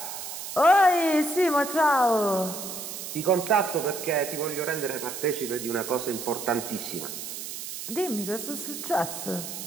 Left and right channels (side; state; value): right; noise; hiss, 8 dB below the sound